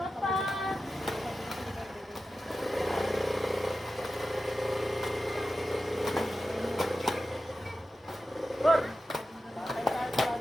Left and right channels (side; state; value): both; normal; correlation 0.92